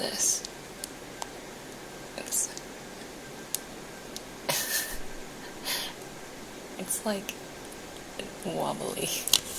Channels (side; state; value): both; identical; correlation 1.00